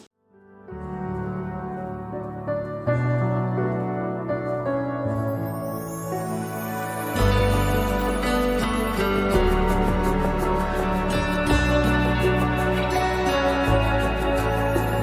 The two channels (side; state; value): both; identical; correlation 1.00